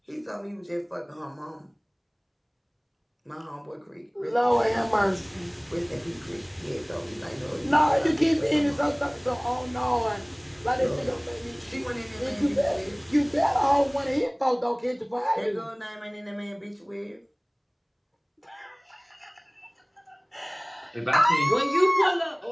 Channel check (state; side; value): identical; both; correlation 1.00